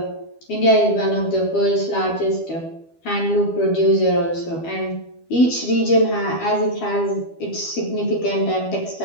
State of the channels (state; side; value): late; right; 12 ms